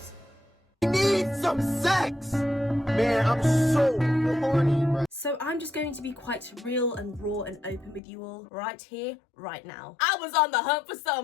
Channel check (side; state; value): right; drops out; at 8.0 s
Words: Need some sex! Man, I'm so horny, bro. So I'm just going to be quite real and raw and open with you all right here, right now. I was on the hunt for